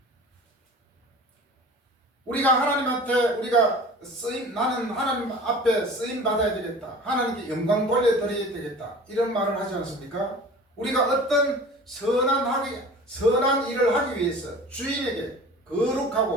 우리가 하나님한테 우리가 나는 하나님 앞에 쓰임 받아야 되겠다. 하나님께 영광 돌려드려야 되겠다. 이런 말을 하지 않습니까? 우리가 어떤 선한 일을 하기 위해서 주인에게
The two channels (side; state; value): both; normal; correlation 0.42